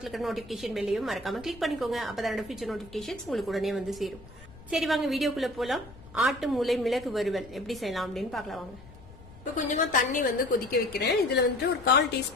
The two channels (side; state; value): left; noise; rumble, 20 dB below the sound